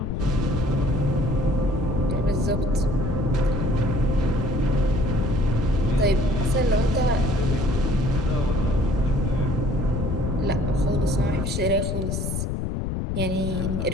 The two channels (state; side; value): noise; left; rumble, 1 dB below the sound